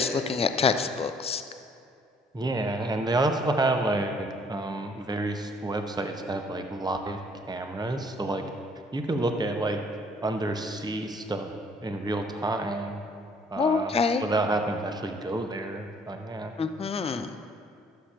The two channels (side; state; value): both; normal; correlation 0.61